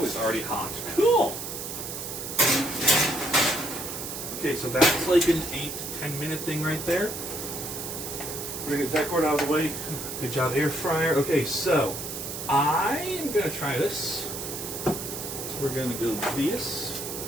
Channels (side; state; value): right; noise; hiss, 7 dB below the sound